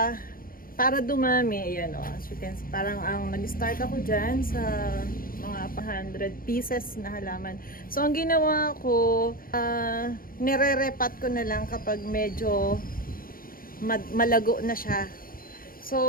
para dumami, ayan o, as you can see, parang ang nag-start ako dyan sa mga 100 pieces na halaman. So, ang ginawa ko, nire-repat ko na lang kapag medyo malago na siya.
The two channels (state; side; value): late; right; 0.42 ms